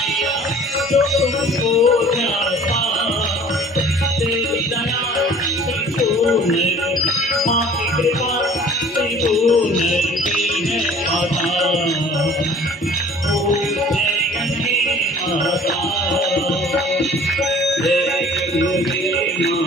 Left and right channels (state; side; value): normal; both; correlation 0.49